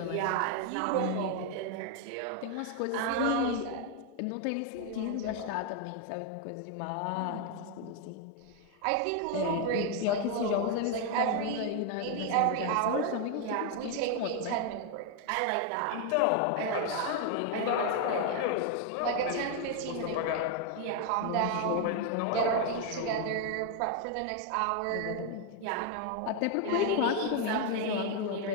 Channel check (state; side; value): different; both; correlation 0.01